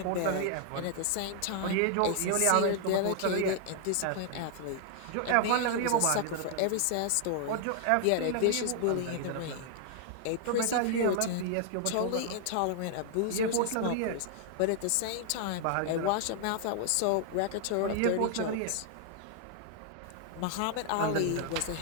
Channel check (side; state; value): both; different; correlation 0.00